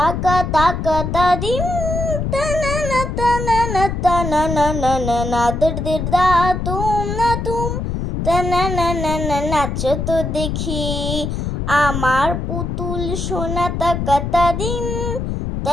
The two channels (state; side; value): noise; left; rumble, 3 dB below the sound